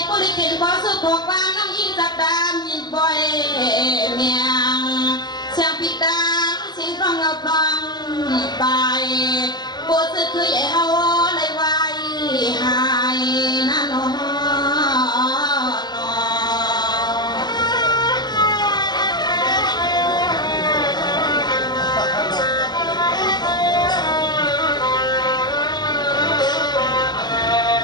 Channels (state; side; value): late; right; 0.20 ms